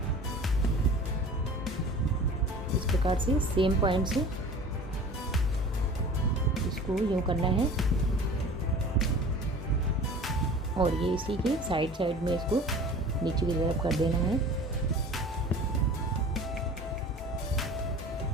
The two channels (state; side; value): normal; both; correlation 0.42